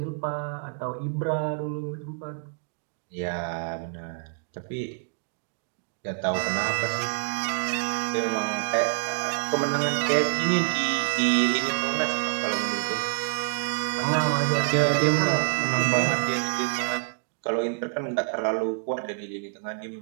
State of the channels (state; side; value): silent; left; 60 dB below the other